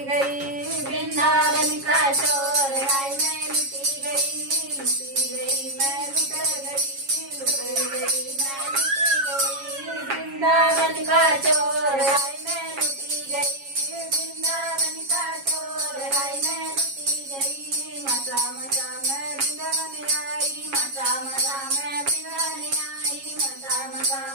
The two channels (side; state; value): left; late; 7.3 ms